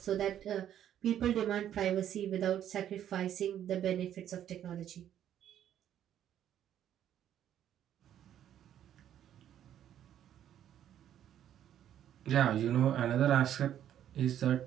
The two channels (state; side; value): quieter; left; 10.7 dB